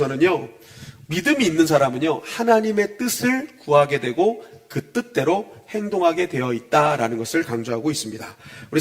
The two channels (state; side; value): identical; both; correlation 1.00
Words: 믿음이 있는 사람은요, 하나님의 뜻을 구하게 되고 그 뜻대로 행동하게 되어 있다라는 것을 강조하고 있습니다. 우리